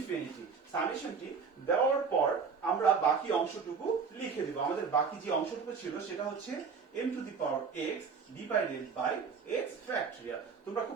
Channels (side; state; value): left; quieter; 5.6 dB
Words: সামেশনটি দেওয়ার পর আমরা বাকি অংশটুকু লিখে দেব। আমাদের বাকি যে অংশটুকু ছিল সেটা হচ্ছে m to the power x divided by x factorial। তোমরা